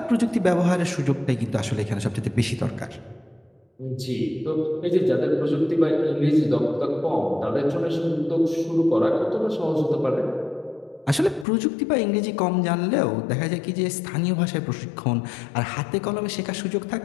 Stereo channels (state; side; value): drops out; right; at 11.5 s